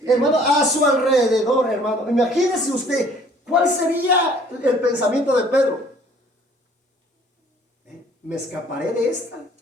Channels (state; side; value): normal; both; correlation 0.55